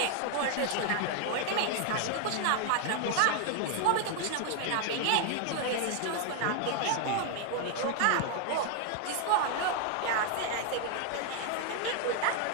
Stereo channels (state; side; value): different; both; correlation 0.00